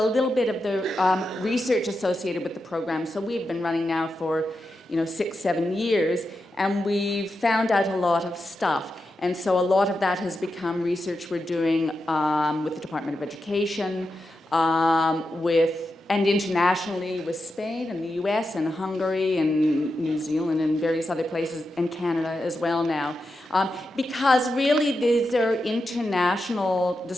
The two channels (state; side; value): normal; both; correlation 0.88